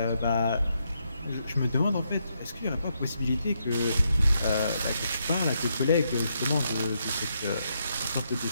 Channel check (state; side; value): inverted; both; correlation -0.79